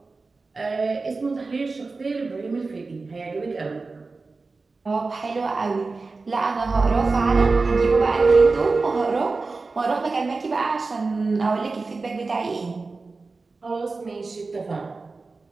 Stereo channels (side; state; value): left; quieter; 3.9 dB